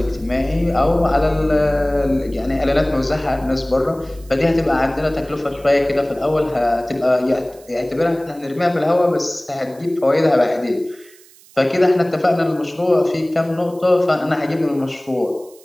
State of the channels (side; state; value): right; noise; hiss, 26 dB below the sound